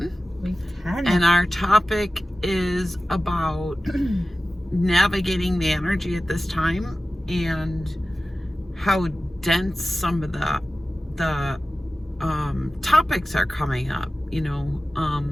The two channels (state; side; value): normal; both; correlation 0.95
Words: Week 10. And our topic is about navigating the energy at this time and how dense some of the topics are coming up.